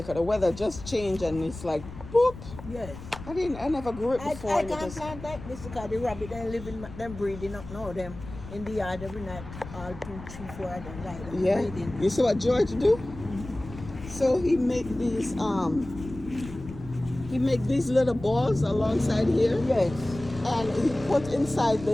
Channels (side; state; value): left; noise; rumble, 13 dB below the sound